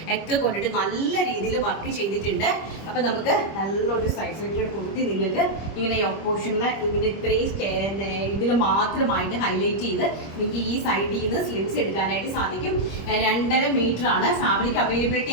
ഒക്കെ കൊണ്ടിട്ട് നല്ല രീതിയിൽ വർക്ക് ചെയ്തിട്ടുണ്ട്. അപ്പം നമുക്ക് നല്ലൊരു സൈസിലേക്ക് കൊടുത്തി നിങ്ങൾക്ക് ഇങ്ങനെ പോർഷനിൽ ഇങ്ങനെ ഇത്രയും ഇതിൽ മാത്രമായിട്ട് ഹൈലൈറ്റ് ചെയ്ത് നിങ്ങൾക്ക് ഈ സൈഡിൽ നിന്ന് സ്ലിറ്റ്സ് എടുക്കാനായിട്ട് സാധിക്കും. 2.5 മീറ്ററാണ് ഫാബ്രിക്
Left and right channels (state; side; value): late; right; 25 ms